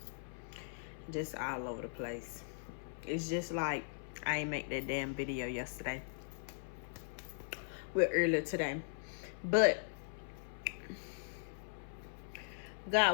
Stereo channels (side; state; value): right; silent; 51 dB below the other